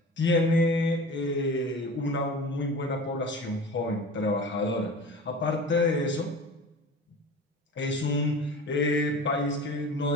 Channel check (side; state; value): both; normal; correlation 0.36